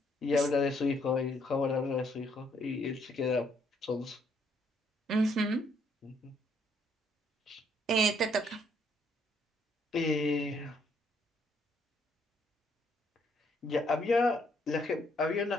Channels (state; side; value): normal; both; correlation 0.69